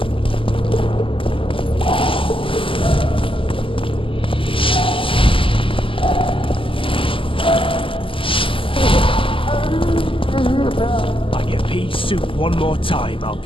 One more time, I'll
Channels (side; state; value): right; late; 0.25 ms